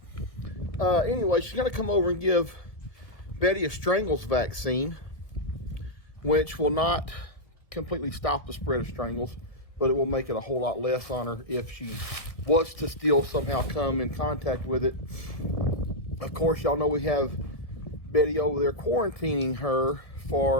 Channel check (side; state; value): right; late; 1.8 ms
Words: Anyway, she's going to come over and give Betty a strangles vaccine, which will not completely stop the spread of strangles, but it will make it a whole lot less on her if she was to still somehow come in contact with it. Of course, y'all know we have Betty over there quarantining her